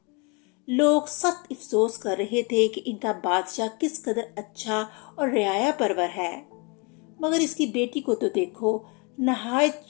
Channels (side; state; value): right; quieter; 31.3 dB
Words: لوگ سخت افسوس کر رہے تھے کہ ان کا بادشاہ کس قدر اچھا اور رعایا پرور ہے، مگر اس کی بیٹی کو تو دیکھو، نہایت